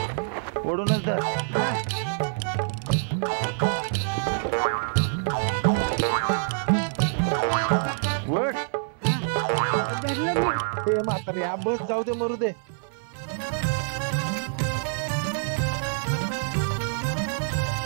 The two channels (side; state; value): left; silent; 61 dB below the other